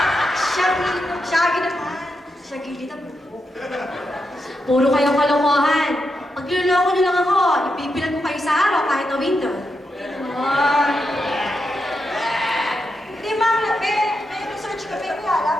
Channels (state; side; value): normal; both; correlation 0.85